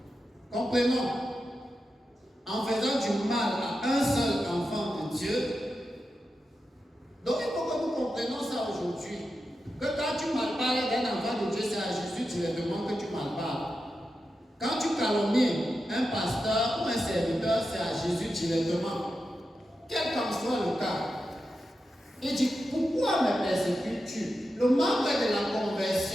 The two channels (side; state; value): both; normal; correlation 0.90